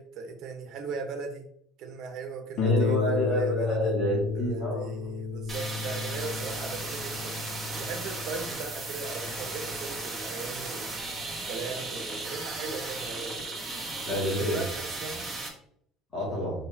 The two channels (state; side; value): normal; both; correlation 0.44